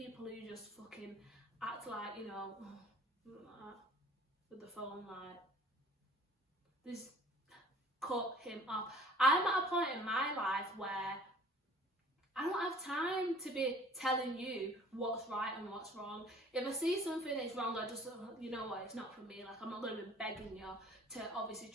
who just fucking act like, you know, with the phone, like, this, cut him off. I'm at a point in my life where I don't have time to be telling you what's right and what's wrong. If I see something that's wrong, I just, you know what, it's not for me. Like, I'm not going to be begging you to obviously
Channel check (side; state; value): both; normal; correlation 0.51